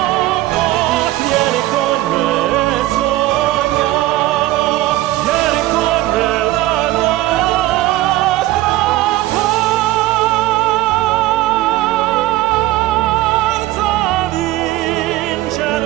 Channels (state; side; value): quieter; left; 16.6 dB